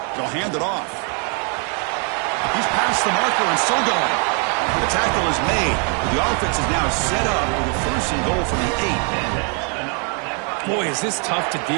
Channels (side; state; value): left; quieter; 38.9 dB